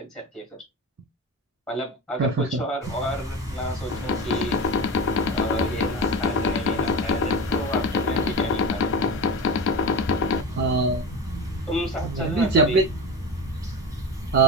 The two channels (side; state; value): both; normal; correlation 0.24